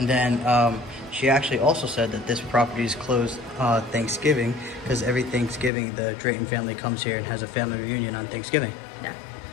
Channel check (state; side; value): drops out; right; at 5.7 s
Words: then she actually also said that this property is closed Thanksgiving because every Thanksgiving the Drayton family comes here and has a family reunion on Thanksgiving. Yeah.